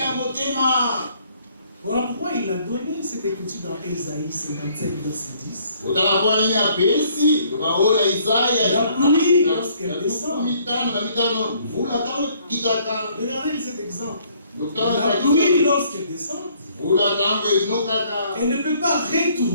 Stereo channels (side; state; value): both; inverted; correlation -0.63